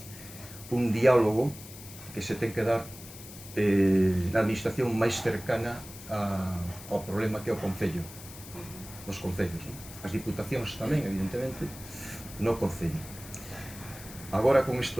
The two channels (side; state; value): left; noise; hiss, 15 dB below the sound